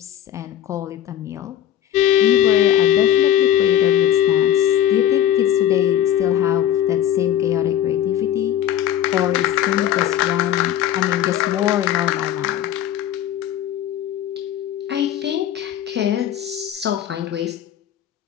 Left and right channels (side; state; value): right; quieter; 10.9 dB